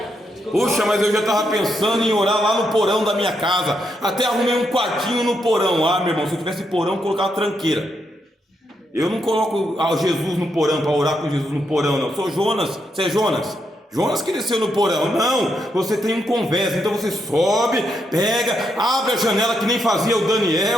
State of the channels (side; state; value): both; normal; correlation 0.80